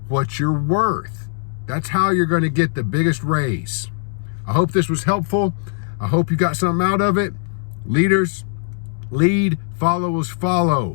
what you're worth. That's how you're going to get the biggest raise. I hope this was helpful. I hope you got something out of it. Leaders, lead, followers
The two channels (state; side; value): silent; right; 64 dB below the other